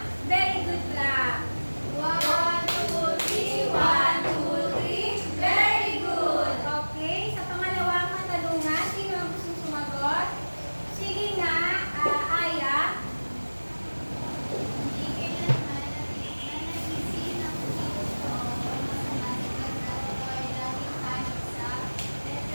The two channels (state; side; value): inverted; both; correlation -1.00